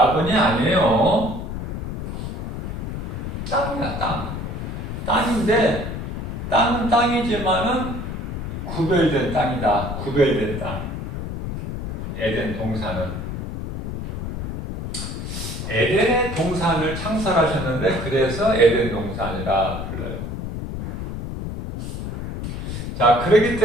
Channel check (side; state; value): left; noise; rumble, 6 dB below the sound